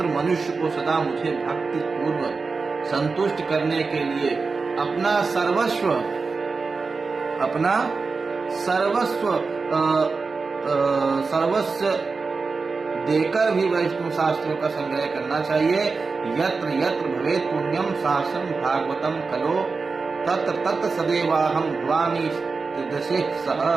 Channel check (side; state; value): left; quieter; 4.4 dB